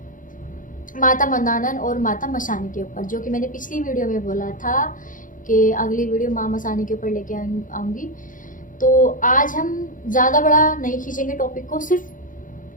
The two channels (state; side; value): late; right; 0.39 ms